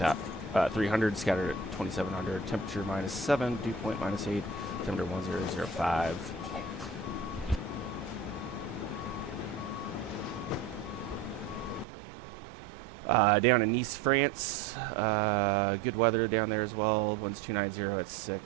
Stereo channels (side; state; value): left; drops out; at 11.9 s